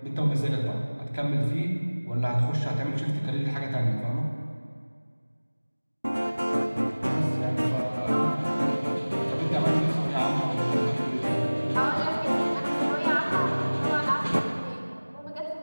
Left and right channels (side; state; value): both; inverted; correlation -1.00